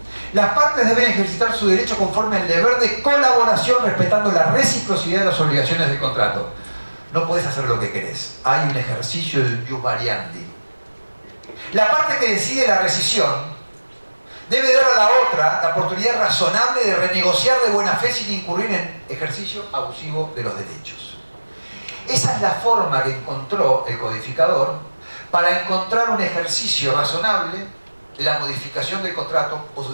Las partes deben ejercitar su derecho conforme al deber de colaboración, respetando la reciprocidad de las obligaciones del contrato. No puedes hacer lo que querés. Hay un ejercicio de jus variandi. La parte que decide la rescisión debe dar a la otra la oportunidad razonable de renegociar de buena fe sin incurrir en ejercicio abusivo de los derechos. Esa es la forma que encontró el codificador para encontrar un ejercicio razonable de la modificación del contrato o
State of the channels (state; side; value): inverted; both; correlation -1.00